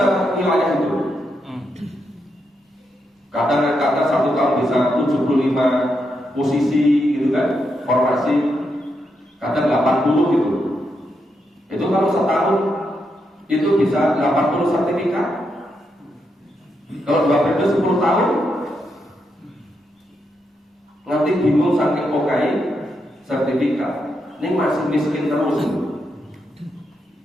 wilayah itu. Kadang-kadang satu tahun bisa 75 posisi gitu kan, formasi. Kadang 80 gitu. Itu kalau setahun itu bisa 80 sertifikat. Kalau 2 periode 10 tahun, nanti bingung saking pokai sertifikat. Ini masih miskin terus.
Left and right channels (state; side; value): normal; both; correlation 0.82